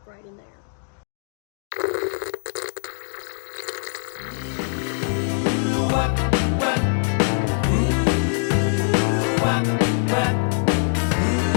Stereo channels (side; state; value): right; silent; digital silence